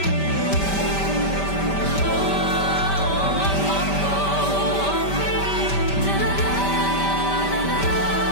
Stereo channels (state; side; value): late; right; 5.1 ms